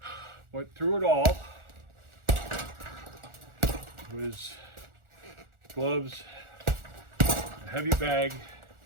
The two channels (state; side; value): late; left; 1.4 ms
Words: But through it all was gloves, a heavy bag,